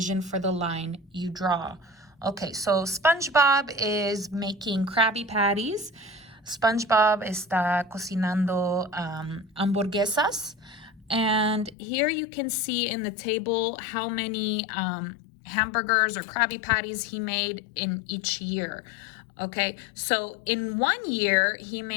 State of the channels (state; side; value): drops out; right; at 11.8 s